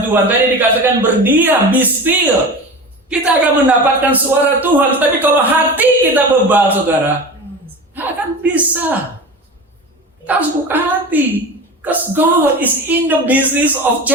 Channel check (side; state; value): both; normal; correlation 0.31